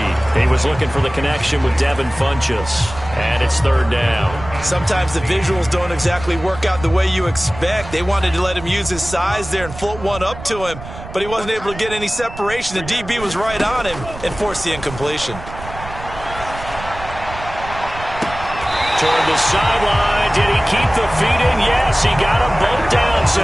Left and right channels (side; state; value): right; noise; rumble, 13 dB below the sound